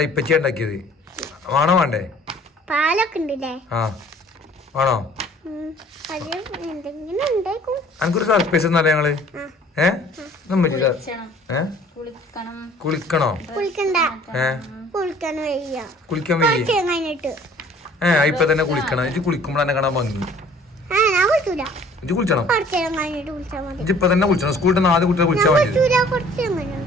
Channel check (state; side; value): normal; both; correlation 0.53